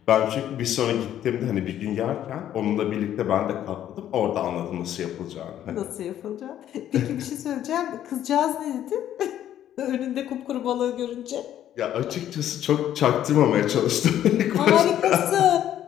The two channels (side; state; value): right; quieter; 11.3 dB